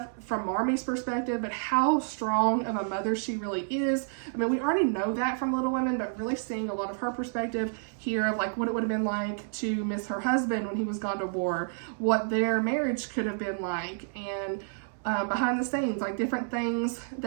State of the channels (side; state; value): left; silent; 58 dB below the other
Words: from Marmee's perspective, but how strong of a mother she really is. I mean, we already know that from Little Women, but really seeing a lot of her perspective here of like what it would have been like to miss her husband when he was gone to war, what their marriage could have been like, and behind the scenes, like different things